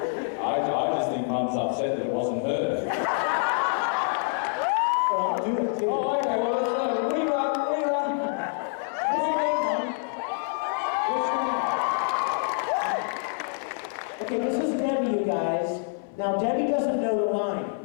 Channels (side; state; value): right; silent; 60 dB below the other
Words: I just think Mum's upset that it wasn't her. Well, I'll do it too. Oh, okay, well, let's rerun. What's your name, Mom? What's your name? Okay, this is Debbie, you guys. Now, Debbie doesn't know the line